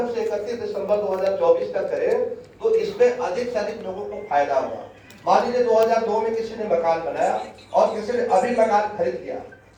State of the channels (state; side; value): identical; both; correlation 1.00